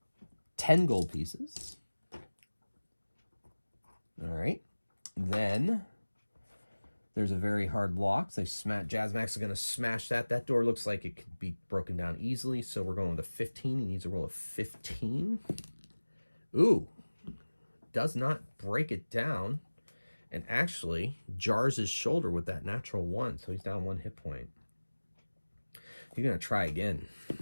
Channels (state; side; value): inverted; both; correlation -1.00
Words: 10 gold pieces. All right, then there's a very hard lock. So Jazmax is going to smash that. That door looks like it could be broken down easily, so we're going with a 15. He needs a roll of 15. Ooh, does not break it down. And actually jars his shoulder with that natural 1, so he's down 1 hit point. He's going to try again.